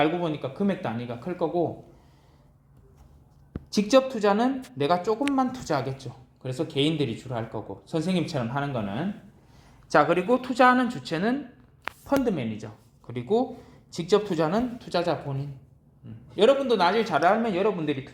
보니까 금액 단위가 클 거고, 직접 투자는 내가 조금만 투자하겠죠. 그래서 개인들이 주로 할 거고, 선생님처럼 하는 거는. 자, 그리고 투자하는 주체는 펀드 매니저. 그리고 직접 투자는 투자자 본인. 여러분도 나중에 잘 알면 여러분들이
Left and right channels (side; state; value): both; identical; correlation 1.00